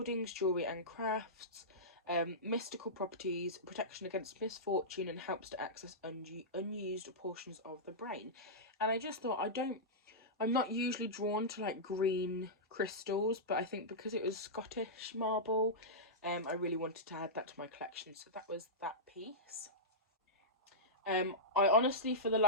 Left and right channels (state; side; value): normal; both; correlation -0.13